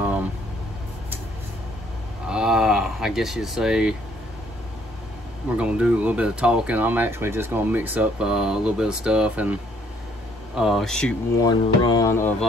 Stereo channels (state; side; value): normal; both; correlation 0.64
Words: I guess you'd say we're going to do a little bit of talking. I'm actually just going to mix up a little bit of stuff and shoot one run of